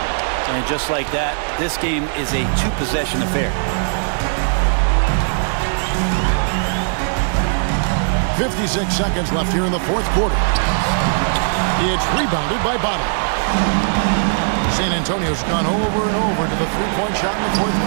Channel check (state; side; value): silent; left; digital silence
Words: And just like that, this game is a 2-possession affair. 56 seconds left here in the fourth quarter. It's rebounded by Bottom. San Antonio's gone over and over to the 3-point shot in the fourth